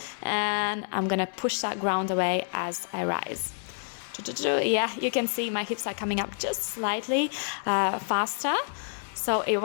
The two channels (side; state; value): right; silent; 59 dB below the other